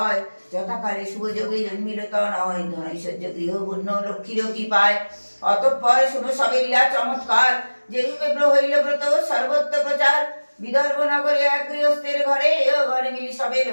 যথাকালে শুভযোগে জন্মিল তনয়, ধনৈশ্বর্য গৃহপূর্ণ লক্ষ্মীর কৃপায়। অতঃপর শুনো সবে লীলা চমৎকার, যে রূপে হইল ব্রত সর্বত্র প্রচার। বিদর্ভ নগরে এক গৃহস্থের ঘরে, ও ঘরে মিলি সবে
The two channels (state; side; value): inverted; both; correlation -1.00